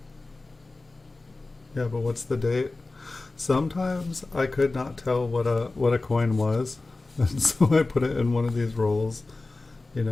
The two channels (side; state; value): right; quieter; 3.3 dB